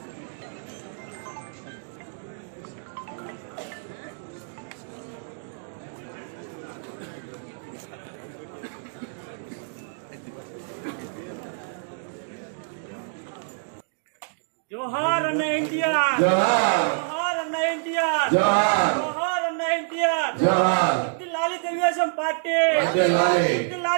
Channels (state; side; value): silent; left; digital silence